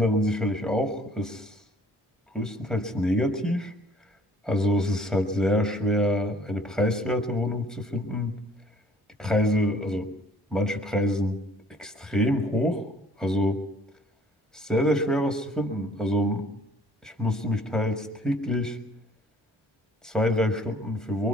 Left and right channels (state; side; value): normal; both; correlation 0.56